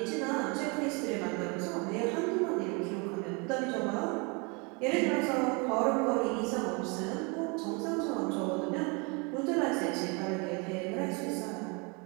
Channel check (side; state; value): left; quieter; 31.0 dB